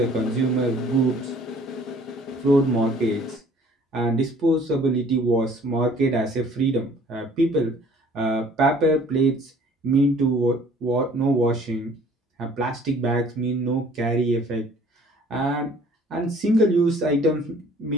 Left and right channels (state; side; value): normal; both; correlation 0.54